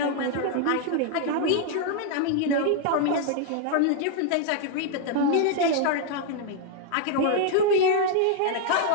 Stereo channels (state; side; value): different; both; correlation 0.00